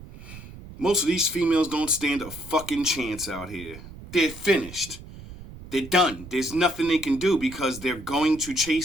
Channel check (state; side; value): noise; right; rumble, 15 dB below the sound